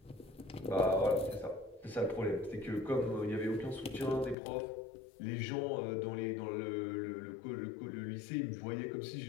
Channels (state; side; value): drops out; right; at 4.4 s